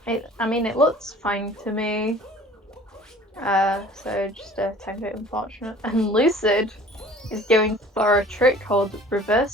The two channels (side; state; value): both; normal; correlation 0.48